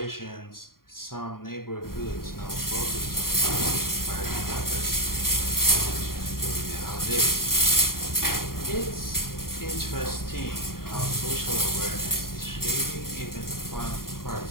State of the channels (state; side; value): late; right; 0.92 ms